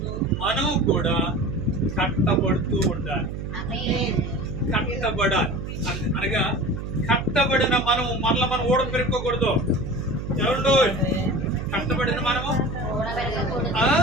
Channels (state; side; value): noise; right; hum, 6 dB below the sound